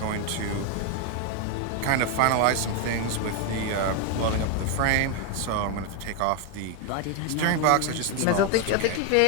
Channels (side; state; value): both; different; correlation 0.01